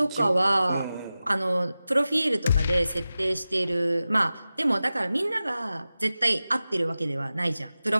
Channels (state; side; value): inverted; both; correlation -0.95